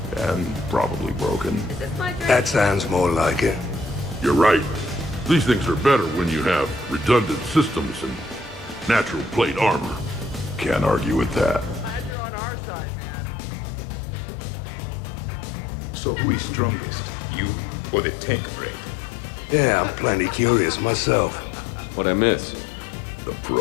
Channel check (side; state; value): right; drops out; at 12.2 s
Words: And probably broken. That sounds more like it. You're right. These things are better when you have redundant systems and natural plate armor. Can't argue with that. So who is strongest? You or the tank brain? Yeah, I'm plenty curious myself. What'd I miss? The